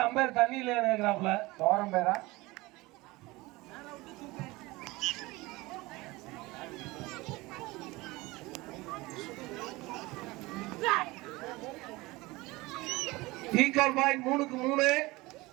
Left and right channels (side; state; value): left; quieter; 21.5 dB